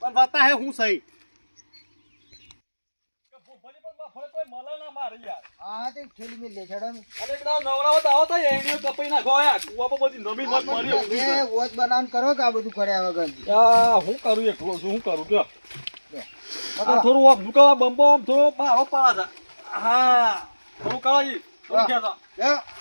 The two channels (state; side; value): inverted; both; correlation -1.00